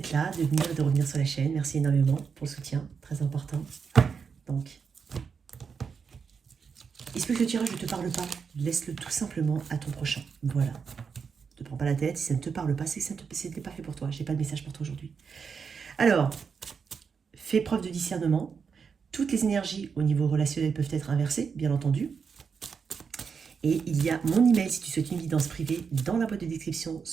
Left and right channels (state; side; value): quieter; left; 6.0 dB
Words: là, de venir et de revenir sur la chaîne. Merci énormément pour le soutien, très important. Donc, il se peut que ce tirage ne te parle pas, laisse-le tout simplement à ton prochain. Voilà. Ne te prends pas la tête, si ça ne te parle pas, c'est que ça n'était pas fait pour toi. Je n'ai pas de message pour toi aujourd'hui. Alors, fais preuve de discernement. Toutes les énergies au niveau relationnel peuvent être inversées, bien entendu. Et il y a mon email si tu souhaites une guidance privée dans la boîte de description